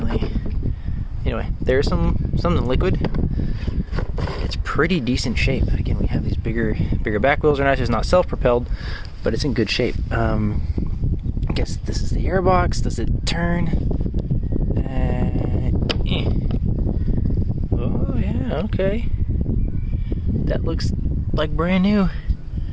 Anyway, there's something liquid. It's pretty decent shape. Again, we have these bigger back wheels. They're not just not self-propelled, but it's in good shape. I guess this is the airbox. Does it turn? Oh yeah, okay. That looks like brand new.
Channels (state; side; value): identical; both; correlation 1.00